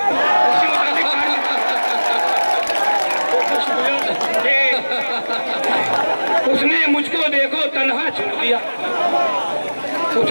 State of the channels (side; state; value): both; inverted; correlation -1.00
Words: मुताबिक उसने मुझको देखो तन्हा छोड़ दिया,